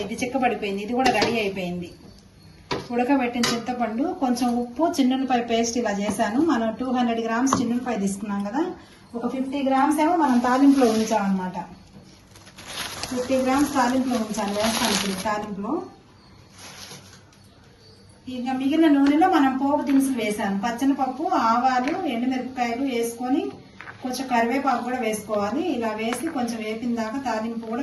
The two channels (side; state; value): both; identical; correlation 1.00